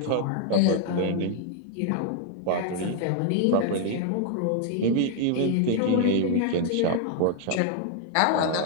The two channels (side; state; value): both; different; correlation 0.00